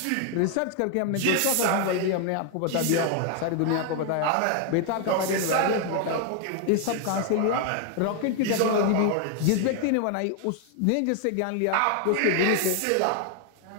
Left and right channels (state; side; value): different; both; correlation 0.00